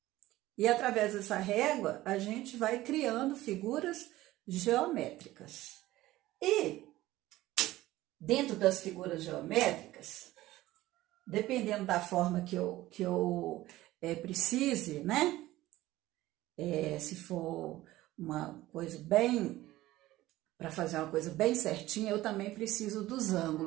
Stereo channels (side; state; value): left; quieter; 16.5 dB